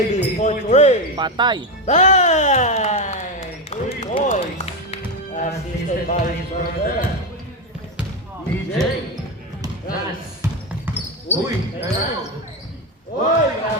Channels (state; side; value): normal; both; correlation 0.13